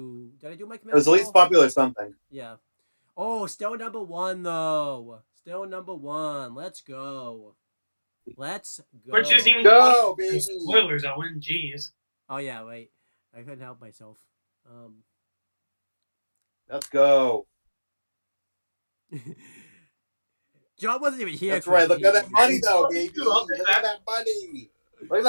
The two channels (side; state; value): both; inverted; correlation -1.00